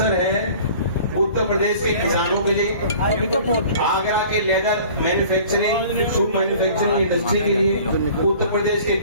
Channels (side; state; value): both; inverted; correlation -0.47